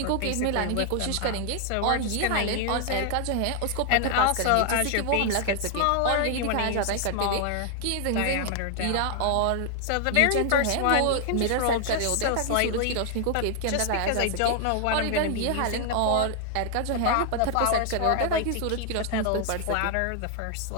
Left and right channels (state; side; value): different; both; correlation 0.00